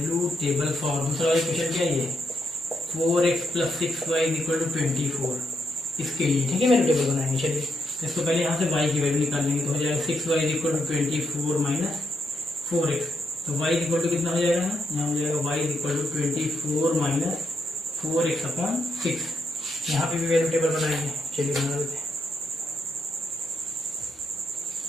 दूसरा वाला इक्वेशन क्या है, 4x + 6y = 24, इसके लिए, ठीक है, वैल्यू टेबल बनाएंगे। चलिए इसको पहले यहाँ से y की वैल्यू निकाल लेंगे, तो हो जाएगा 6y = 24 - 4x, तो y = कितना हो जाएगा, यहाँ हो जाएगा y = 24 - 4x/6, यहाँ पे भी वैल्यू टेबल बनाएंगे। चलिए बना देते हैं,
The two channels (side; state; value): both; normal; correlation 0.80